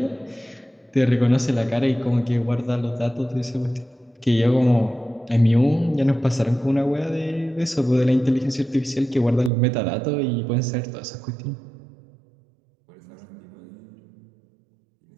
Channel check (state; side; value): drops out; left; at 9.5 s